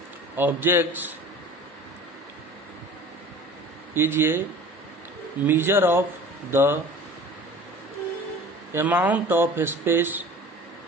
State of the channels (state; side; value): normal; both; correlation 0.42